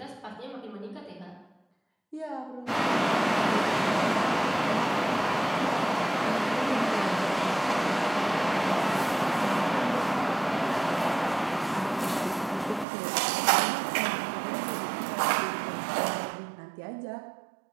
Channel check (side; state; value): left; drops out; at 12.9 s